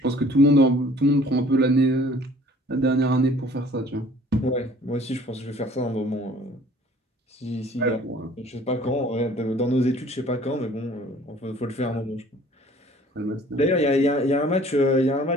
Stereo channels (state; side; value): normal; both; correlation 0.53